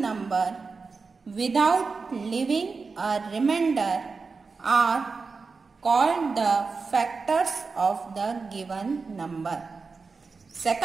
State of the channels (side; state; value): left; quieter; 4.5 dB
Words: number without leaving a remainder are called the factors of the given number.